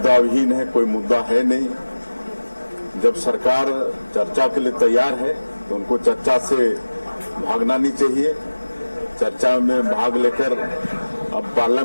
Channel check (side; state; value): both; inverted; correlation -1.00